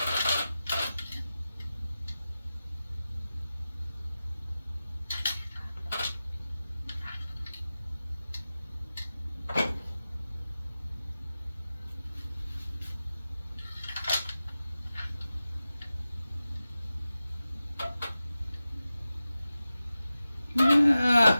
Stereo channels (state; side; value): inverted; both; correlation -0.94